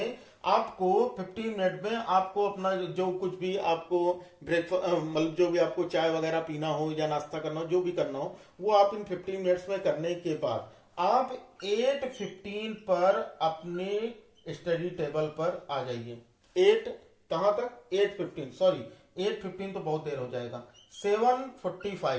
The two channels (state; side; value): identical; both; correlation 1.00